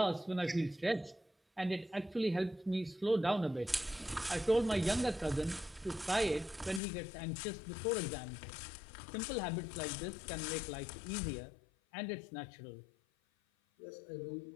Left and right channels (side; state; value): right; drops out; at 6.8 s